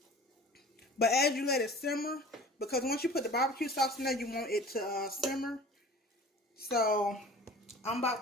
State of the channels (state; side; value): normal; both; correlation 0.43